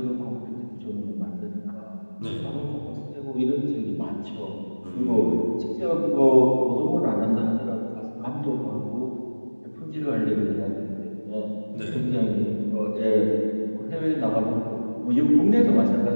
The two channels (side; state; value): both; inverted; correlation -1.00